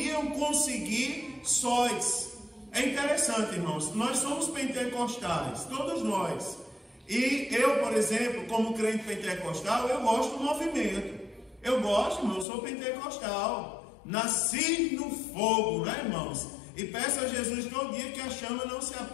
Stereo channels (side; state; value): right; drops out; at 12.5 s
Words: conseguir sós. É interessante, irmãos, nós somos pentecostais, todos nós. E eu, por exemplo, como crente pentecostal, eu gosto do movimento. Eu gosto, irmão, eu sou pentecostal. Nasci no fogo, né, irmãos? E peço a Jesus todo dia que a chama não se